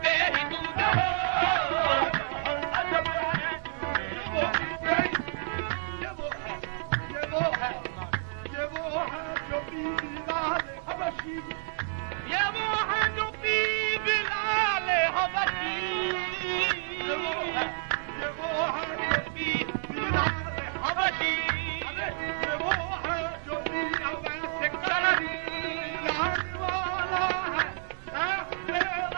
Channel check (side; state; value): left; silent; digital silence